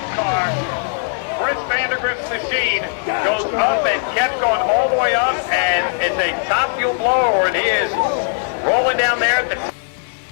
Chris Vandergrift's machine goes up and kept going all the way up, and it's a top fuel blower, and he is rolling down there at the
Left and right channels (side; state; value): right; silent; digital silence